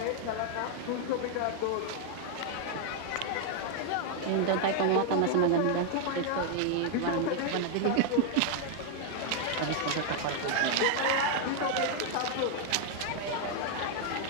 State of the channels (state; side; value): different; both; correlation 0.00